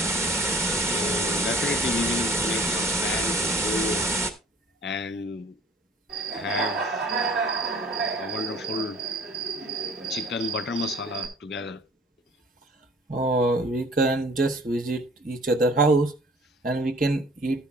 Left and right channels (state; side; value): normal; both; correlation 0.51